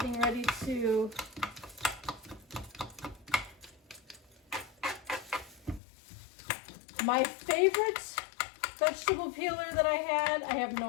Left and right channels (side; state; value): right; drops out; at 5.8 s